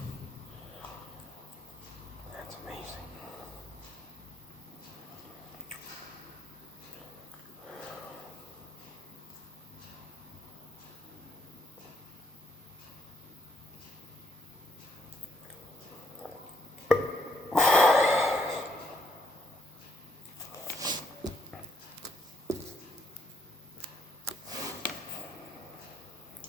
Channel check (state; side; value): normal; both; correlation 0.69